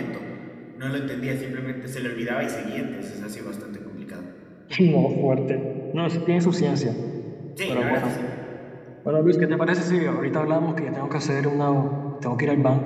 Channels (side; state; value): both; identical; correlation 1.00